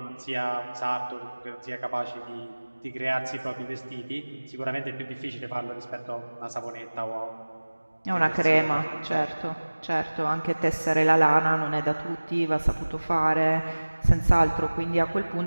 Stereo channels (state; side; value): inverted; both; correlation -1.00